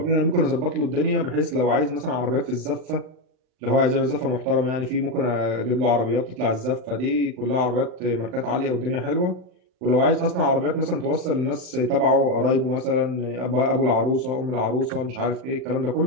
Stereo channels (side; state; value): left; late; 39 ms